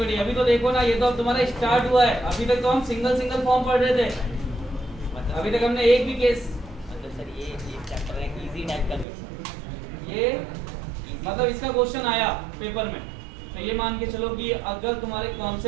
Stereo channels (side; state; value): left; drops out; at 9.1 s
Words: अभी तो देखो ना, ये तो अब तुम्हारा स्टार्ट हुआ है। अभी तक तो हम सिंगल सिंगल फॉर्म पढ़ रहे थे, अभी तक हमने एक भी केस, मतलब सर ये चैप्टर है इजी टाइप का क्वेश्चन, ये मतलब इसका क्वेश्चन आया पेपर में, तो ये मान के चलो कि अगर तुम्हारे